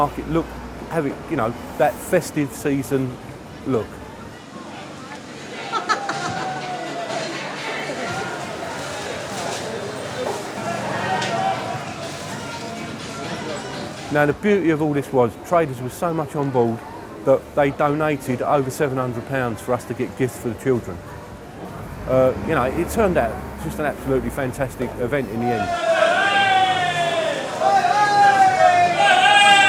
look, have it, you know, that festive season look. Now the beauty of all this was, traders were so much on board that they donated over £700 for us to get gifts for the children. You know, it turned out just an absolutely fantastic event in the end.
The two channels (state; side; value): identical; both; correlation 1.00